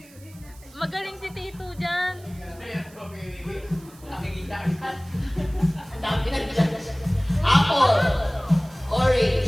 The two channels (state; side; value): noise; right; hiss, 24 dB below the sound